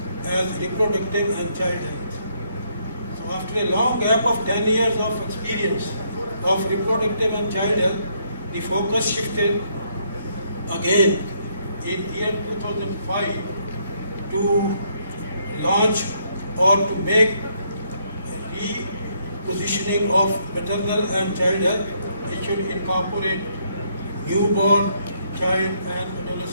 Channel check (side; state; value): both; inverted; correlation -0.72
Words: as reproductive and child health. So after a long gap of 10 years of experience of reproductive and child health, the focus shifted again in year 2005 to launch or to make repositioning of maternal and child health. It should incorporate newborn, child and